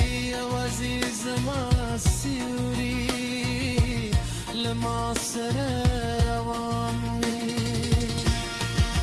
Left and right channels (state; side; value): identical; both; correlation 1.00